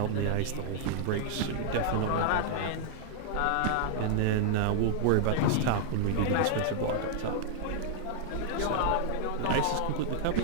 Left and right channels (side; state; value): both; different; correlation -0.01